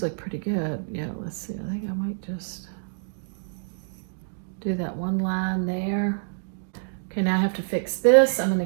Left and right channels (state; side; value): silent; left; digital silence